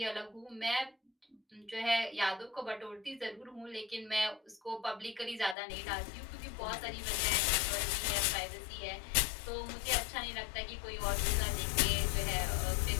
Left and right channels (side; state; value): right; drops out; at 5.6 s